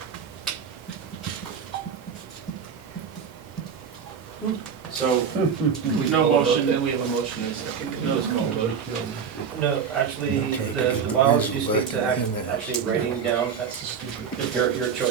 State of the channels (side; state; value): left; quieter; 6.9 dB